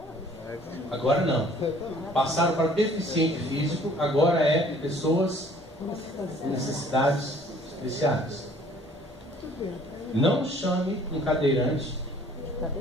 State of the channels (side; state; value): both; normal; correlation 0.55